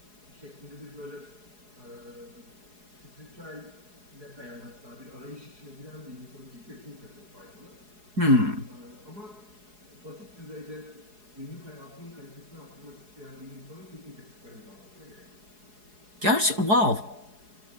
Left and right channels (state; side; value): late; left; 4.8 ms